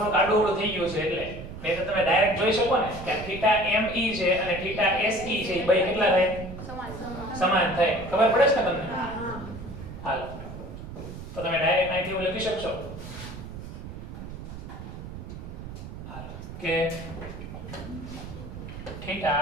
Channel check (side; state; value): right; noise; rumble, 11 dB below the sound